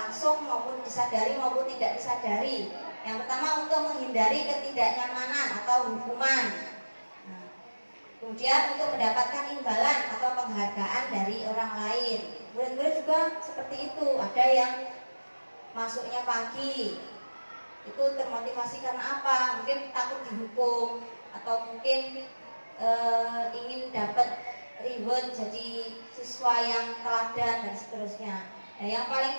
maupun disadari maupun tidak disadari. Yang pertama untuk menghindari ketidaknyamanan atau hukuman. Kemudian untuk mendapatkan imbalan atau penghargaan dari orang lain. Murid-murid juga seperti itu. Ada yang masuknya pagi, itu termotivasi karena apa? Mungkin takut dihukum atau mungkin ingin dapat reward jadi siswa yang teladan dan seterusnya. Nah, yang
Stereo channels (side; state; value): both; inverted; correlation -1.00